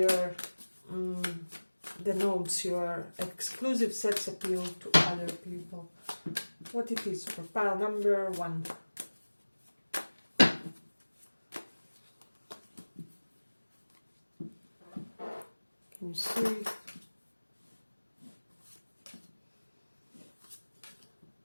denotes your exclusive sex appeal to other people? What it is for pile number 1. Can you see?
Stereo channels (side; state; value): both; inverted; correlation -1.00